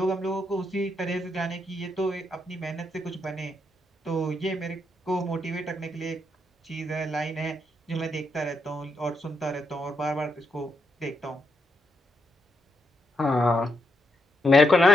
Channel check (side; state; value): both; normal; correlation 0.80